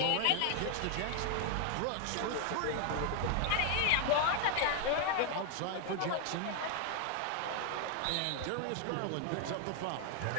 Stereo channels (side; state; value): both; different; correlation 0.00